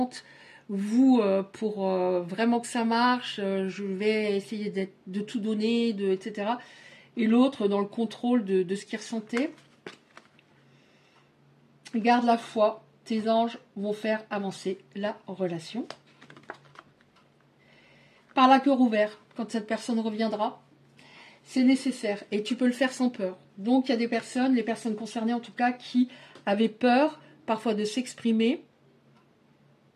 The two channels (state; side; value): identical; both; correlation 1.00